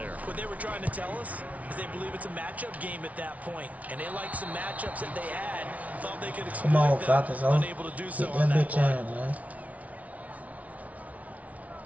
What they were trying to tell us is they believe it's a matchup game at that point, and they like some matchups that they had, thought they could exploit. Come on, them, Falcons, unable to do so get on that that bitch play. in, man.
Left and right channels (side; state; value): left; late; 0.069 ms